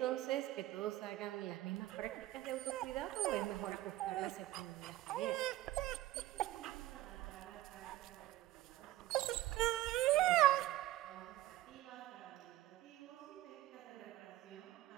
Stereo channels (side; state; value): left; quieter; 15.7 dB